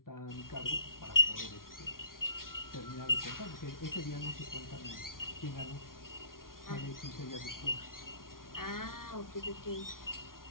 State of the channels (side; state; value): right; late; 0.91 ms